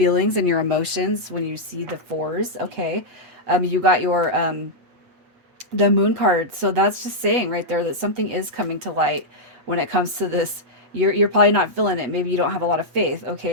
and your emotions when you see the fours. Okay, you got your the moon card, so that's just saying right there that something is coming to light when it comes to this. You're probably not feeling it. Maybe you don't have a lot of faith,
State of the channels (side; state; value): left; late; 8.0 ms